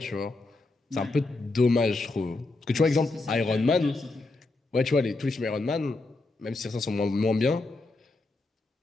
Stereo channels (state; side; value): quieter; right; 3.2 dB